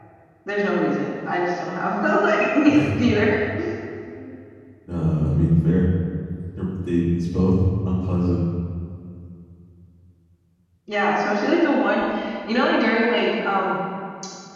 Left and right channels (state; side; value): identical; both; correlation 1.00